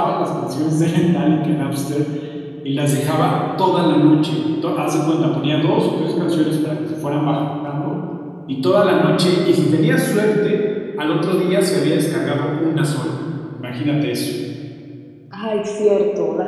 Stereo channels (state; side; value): identical; both; correlation 1.00